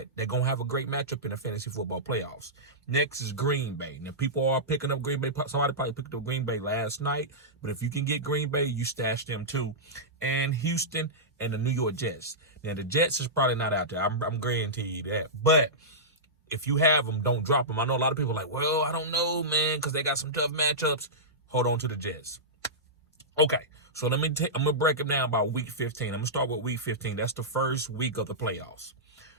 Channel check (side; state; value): both; normal; correlation -0.14